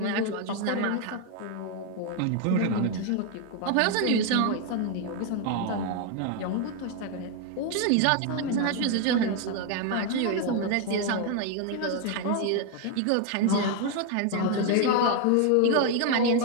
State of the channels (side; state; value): both; different; correlation 0.01